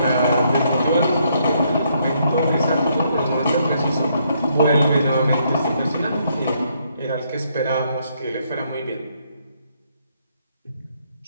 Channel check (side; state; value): both; inverted; correlation -0.72